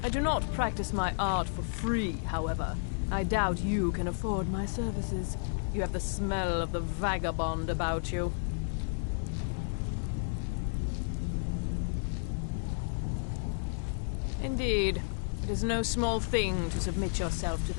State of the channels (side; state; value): right; silent; 56 dB below the other